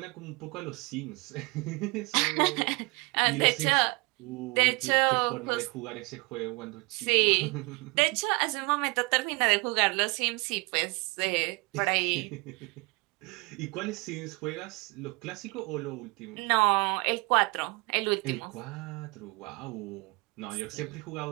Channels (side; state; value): left; quieter; 26.8 dB